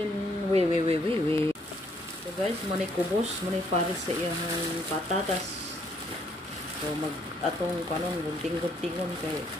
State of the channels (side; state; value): both; normal; correlation 0.68